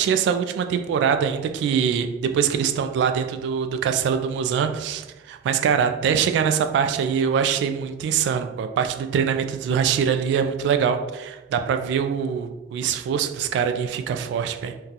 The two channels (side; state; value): left; quieter; 7.1 dB